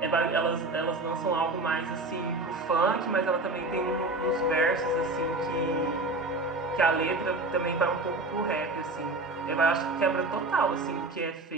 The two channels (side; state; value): left; quieter; 3.0 dB